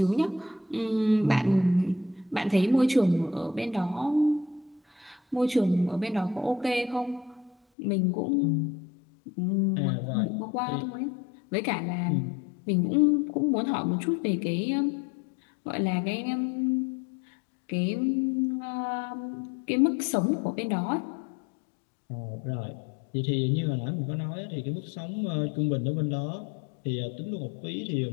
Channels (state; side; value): drops out; right; at 7.6 s